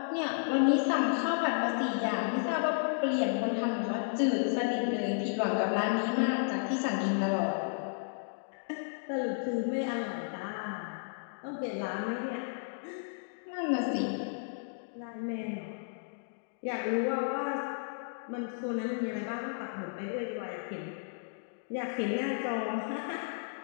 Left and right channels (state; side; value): silent; right; digital silence